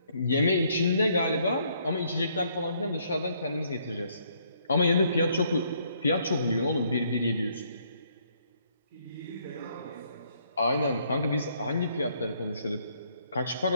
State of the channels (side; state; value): both; inverted; correlation -0.69